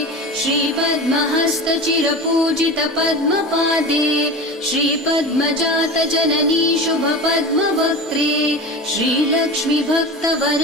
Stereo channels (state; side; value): normal; both; correlation 0.30